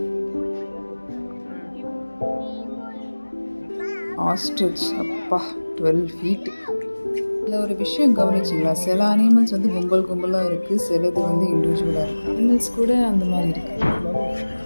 ஆஸ்ட்ரிச், அப்பா 12 feet. இதில் ஒரு விஷயம் கவனிச்சிங்களா, சில அனிமல்ஸ் வந்து கும்பலாக இருக்குது, சிலது வந்து இண்டிவிஜுவலாக இருக்குது. அனிமல்ஸ் கூட அந்த மாதிரி இருக்குது.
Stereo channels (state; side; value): inverted; both; correlation -1.00